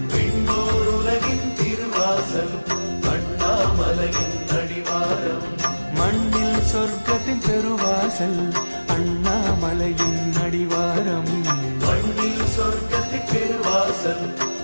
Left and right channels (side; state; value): both; inverted; correlation -1.00